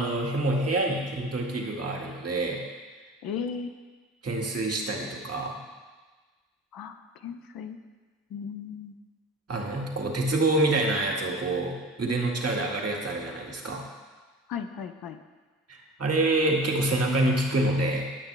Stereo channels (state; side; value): normal; both; correlation 0.38